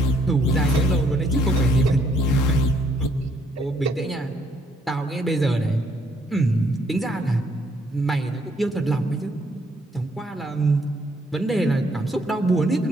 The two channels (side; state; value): both; normal; correlation 0.69